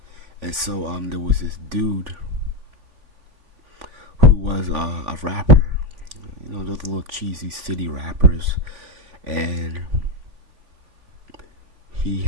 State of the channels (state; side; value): late; left; 3.5 ms